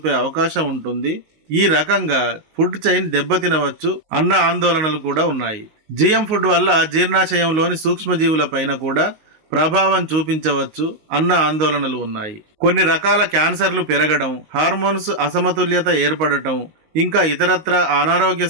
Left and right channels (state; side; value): late; left; 19 ms